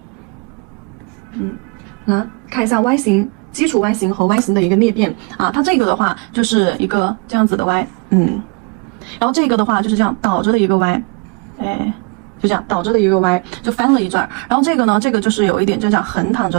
来看一下 Y 型，基础 Y 型和 Y 型的一个裂变啊，它这个的话就是一个这样子的 Y， 然后这个的话就是这样倒着的一个 Y， 就这样倒着的一个 Y， 就翻了一转。然后这个呢，这个就是有一点就这样横躺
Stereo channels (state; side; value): quieter; left; 31.5 dB